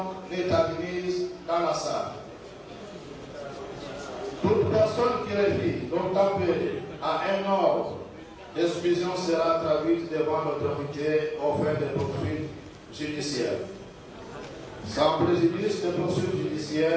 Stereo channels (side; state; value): both; identical; correlation 1.00